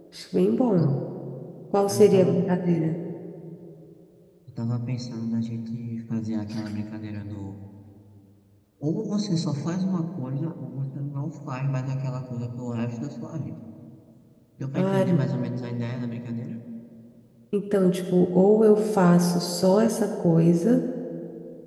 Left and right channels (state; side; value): identical; both; correlation 1.00